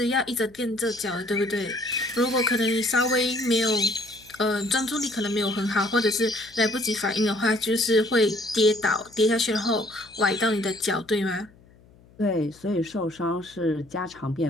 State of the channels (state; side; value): noise; left; hum, 27 dB below the sound